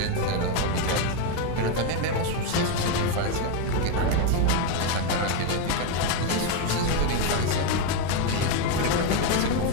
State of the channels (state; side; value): different; both; correlation 0.02